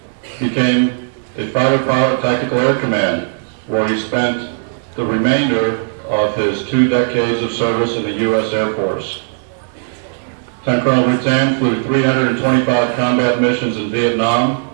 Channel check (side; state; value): left; silent; digital silence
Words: became a fighter pilot Tactical Air Command, where he spent the remainder of his 2 decades of service in the U.S. Air Force. Lieutenant Colonel Rutan flew 325 combat missions in Vietnam,